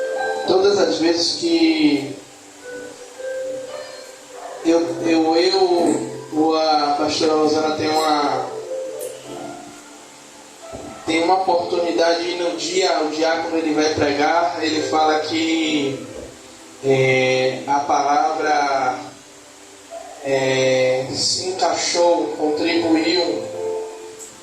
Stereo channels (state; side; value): identical; both; correlation 1.00